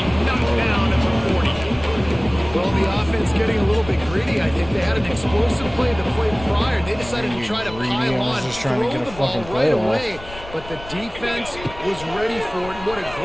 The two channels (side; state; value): left; noise; rumble, 15 dB below the sound